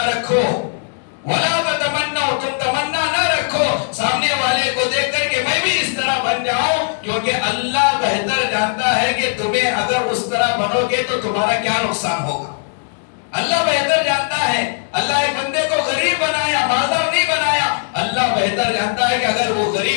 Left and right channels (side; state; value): right; silent; digital silence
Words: رکھو. وَلَا تَتَمَنَّوْا، تم تمنا نہ رکھو سامنے والے کو دیکھ کر کہ میں بھی اس طرح بن جاؤں، کیونکہ اللہ بہتر جانتا ہے کہ تمہیں اگر اس طرح بنو گے تو تمہارا کیا نقصان ہوگا. اللہ بہتر جانتا ہے. اللہ ایک بندے کو غریب بنایا، مالدار نہیں بنایا. اللہ بہتر جانتا ہے کہ اگر وہ